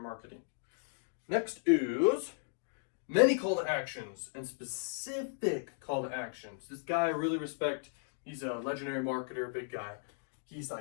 marketing. Next is many call to actions and specific call to actions. This guy I really respect. He's a legendary marketer, big guy. He's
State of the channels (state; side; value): silent; right; digital silence